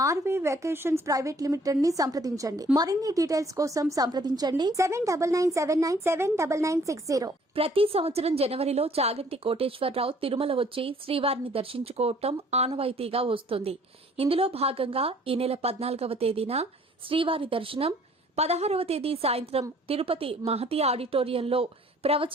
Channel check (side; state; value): both; normal; correlation 0.58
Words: ఆర్వీ వెకేషన్స్ ప్రైవేట్ లిమిటెడ్ ని సంప్రదించండి. మరిన్ని డీటెయిల్స్ కోసం సంప్రదించండి 7997979960. ప్రతి సంవత్సరం జనవరిలో చాగంటి కోటేశ్వరరావు తిరుమల వచ్చి శ్రీవారిని దర్శించుకోవటం ఆనవాయితీగా వస్తుంది. ఇందులో భాగంగా ఈ నెల 14వ తేదీన శ్రీవారి దర్శనం, 16వ తేదీ సాయంత్రం తిరుపతి మహతి ఆడిటోరియంలో